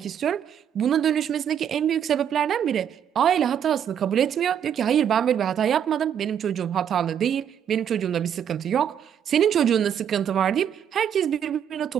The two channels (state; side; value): quieter; left; 8.9 dB